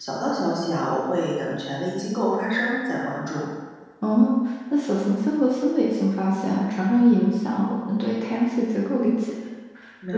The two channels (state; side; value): identical; both; correlation 1.00